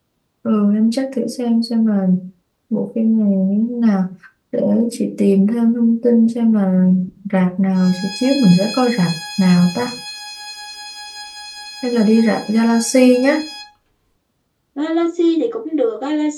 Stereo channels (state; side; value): identical; both; correlation 1.00